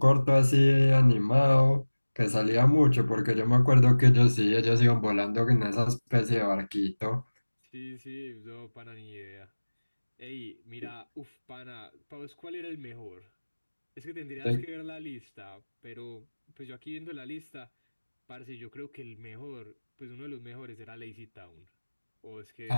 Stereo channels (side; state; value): both; inverted; correlation -1.00